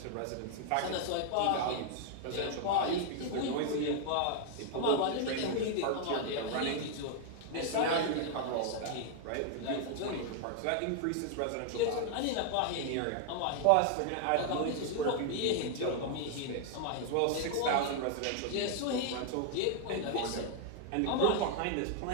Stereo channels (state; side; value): different; both; correlation 0.00